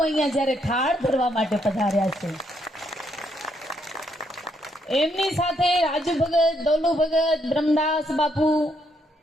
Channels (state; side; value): normal; both; correlation 0.74